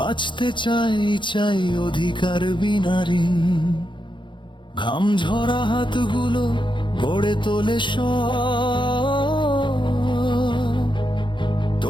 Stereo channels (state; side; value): late; right; 0.23 ms